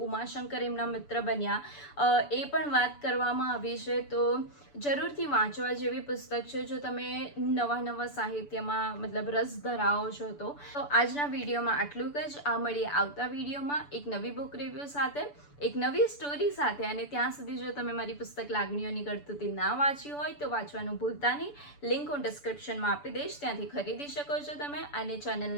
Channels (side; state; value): right; late; 6.9 ms